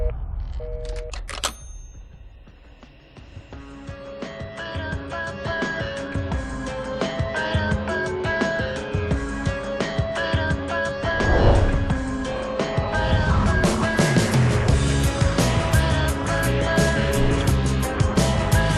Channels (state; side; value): identical; both; correlation 1.00